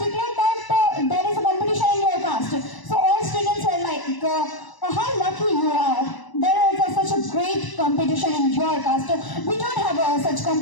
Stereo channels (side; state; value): right; late; 1.0 ms